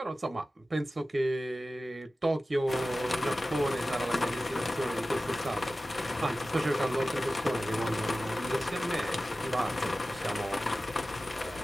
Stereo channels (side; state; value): both; normal; correlation 0.95